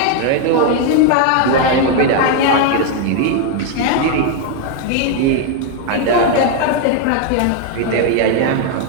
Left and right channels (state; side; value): different; both; correlation 0.01